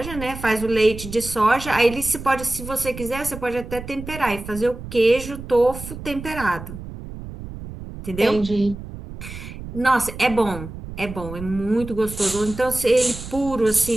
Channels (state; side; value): noise; right; rumble, 11 dB below the sound